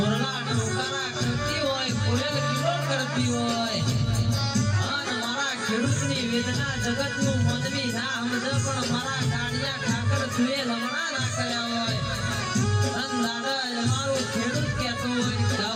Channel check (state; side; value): identical; both; correlation 1.00